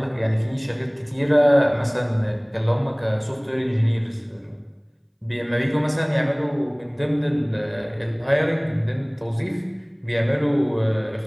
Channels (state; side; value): identical; both; correlation 1.00